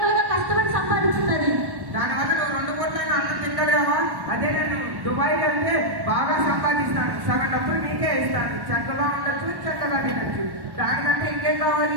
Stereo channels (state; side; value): late; left; 1.1 ms